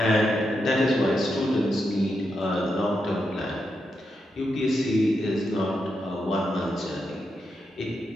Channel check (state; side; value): normal; both; correlation 0.84